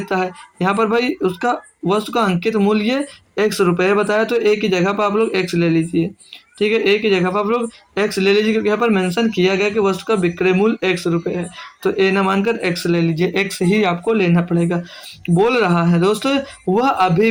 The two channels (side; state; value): both; identical; correlation 1.00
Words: है। यहाँ पर भाई उसका वस्तु का अंकित मूल्य 100 रुपये बताया, तो एक की जगह पर आप लोग x ले लीजिए। ठीक है, ए की जगह पर आप लोग एक्स ले लीजिए क्योंकि यहाँ पर मेंशन किया गया कि वस्तु का विक्रय मूल्य एक्स रुपये है, तो ए न मानकर एक्स ले लीजिए, एक्स ही आपको लेना पड़ेगा। बोल रहा है दोस्तों वह अभी